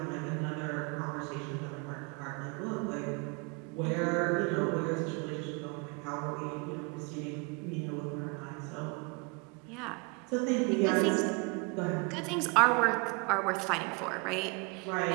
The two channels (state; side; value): quieter; left; 30.6 dB